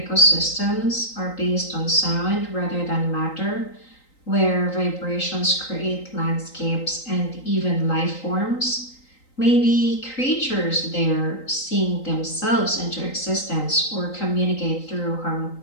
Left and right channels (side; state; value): right; late; 3.9 ms